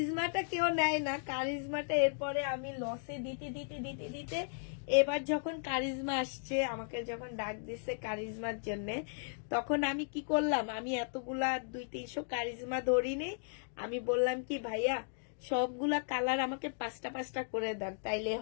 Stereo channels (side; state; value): right; silent; digital silence